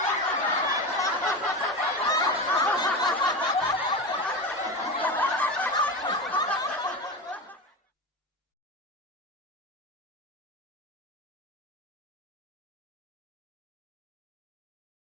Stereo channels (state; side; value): normal; both; correlation 0.22